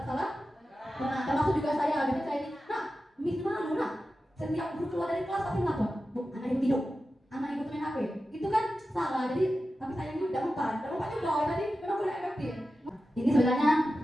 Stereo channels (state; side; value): normal; both; correlation 0.93